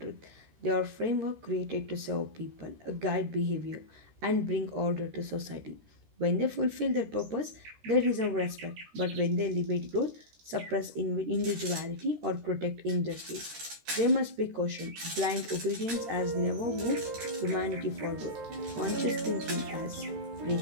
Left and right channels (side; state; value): left; late; 13 ms